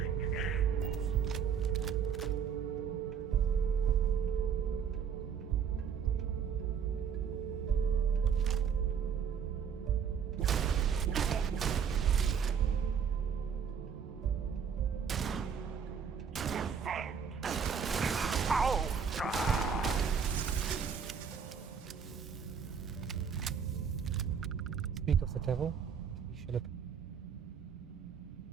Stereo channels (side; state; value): left; quieter; 7.0 dB